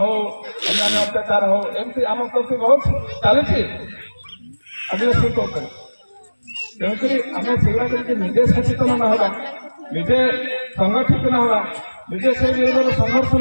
अन्य अत्याचार हो एमती आम प्रति बहुत चली आदिवासी तेणुक आम से निजे सचेतन न होगा निजे संगठित न होगा निजे से संघर्ष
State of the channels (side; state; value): both; inverted; correlation -1.00